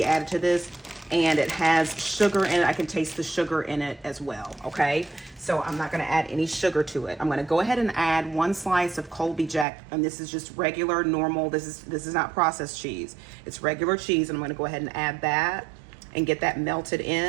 added to this, and it has sugar in it. I can taste the sugar in it as well, okay? So I'm not gonna add any sugar to it. I'm gonna go ahead and add 1 slice of Colby Jack, and this is just regular, normal, this is not processed cheese. It's regular cheese, and I'm gonna go ahead and add that and get that melted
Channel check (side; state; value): left; drops out; at 9.7 s